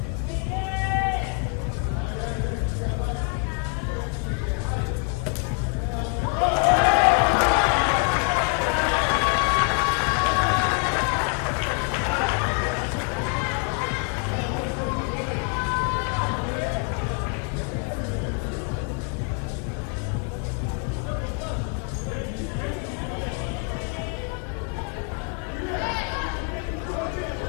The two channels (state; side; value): quieter; right; 35.0 dB